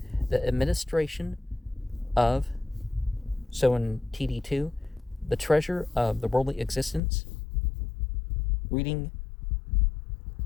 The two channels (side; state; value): right; drops out; at 7.0 s